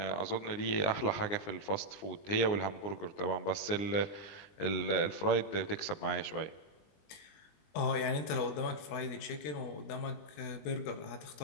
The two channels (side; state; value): right; late; 20 ms